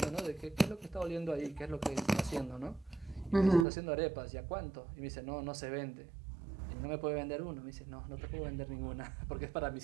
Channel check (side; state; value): left; drops out; at 3.7 s